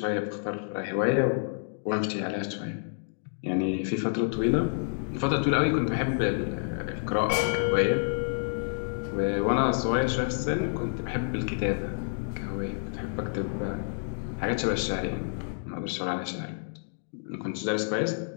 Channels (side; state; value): right; silent; digital silence